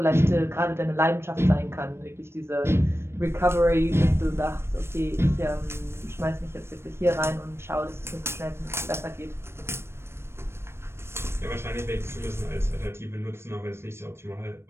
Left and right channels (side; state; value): left; late; 0.12 ms